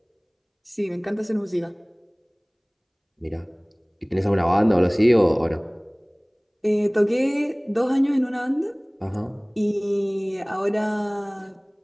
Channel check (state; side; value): identical; both; correlation 1.00